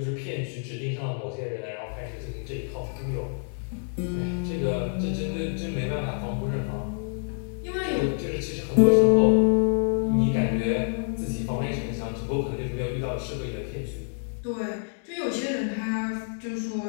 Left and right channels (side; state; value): right; silent; 59 dB below the other